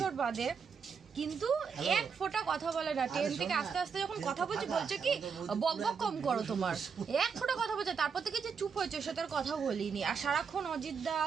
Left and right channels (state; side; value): quieter; left; 6.1 dB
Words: বাদে, কিন্তু এক ফোঁটা কথা বলে না। ট্রেন থেকে আস্তে আস্তে যখন কথা বলছি, বলছে কি বক বক কম করো তোমার, এক ফোঁটা কথা বলছে। তারপর থেকে যে চুপ হয়েছে, ওর সাথে আর কথা বলিনি। আর সারাক্ষণ অজিতদা